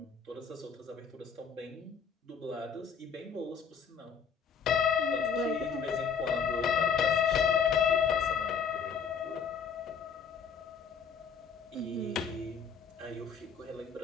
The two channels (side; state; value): right; quieter; 6.3 dB